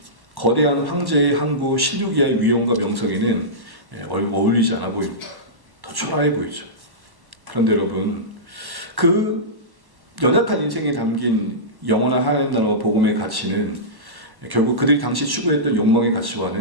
거대한 황제의 항구 실루기아의 위엄과 명성에는 어울리지 않아 보입니다. 더 초라해 보이죠. 그런데 여러분, 그 연약한 인생에 담긴 영원한 하나님 나라와 복음의 가치는 결국 그들이 당시 추구했던 욕망의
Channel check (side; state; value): left; late; 1.1 ms